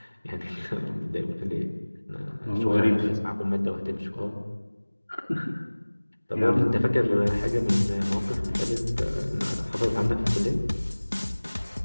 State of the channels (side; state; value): both; inverted; correlation -1.00